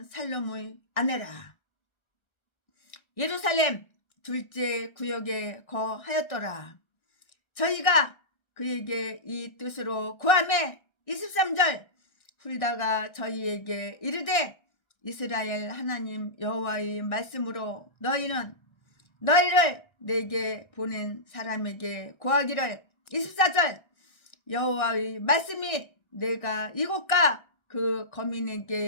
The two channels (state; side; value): late; right; 1.3 ms